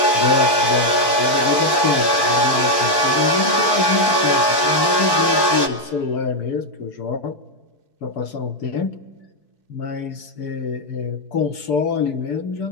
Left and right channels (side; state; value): right; late; 4.5 ms